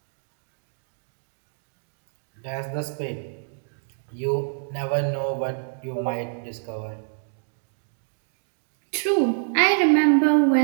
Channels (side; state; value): left; silent; digital silence